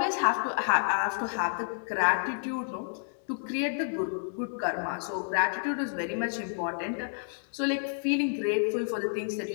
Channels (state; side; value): silent; right; digital silence